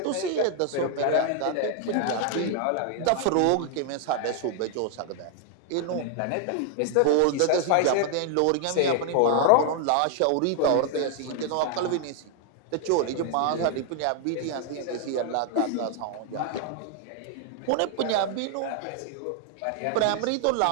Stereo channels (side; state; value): both; different; correlation 0.00